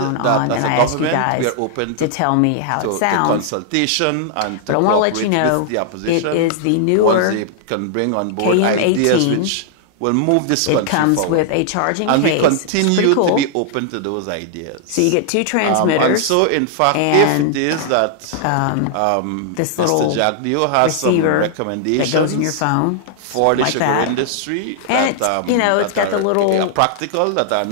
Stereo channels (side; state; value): both; different; correlation -0.01